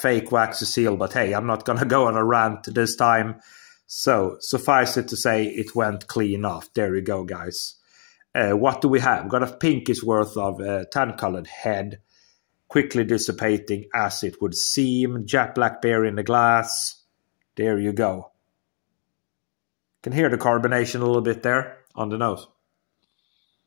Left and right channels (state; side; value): silent; right; 63 dB below the other